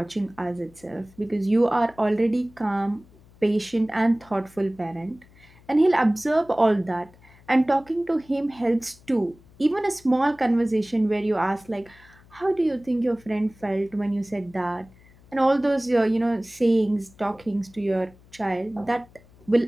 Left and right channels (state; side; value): noise; left; hum, 26 dB below the sound